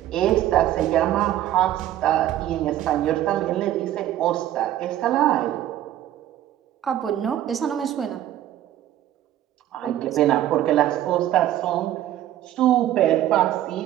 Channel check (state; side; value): quieter; left; 12.7 dB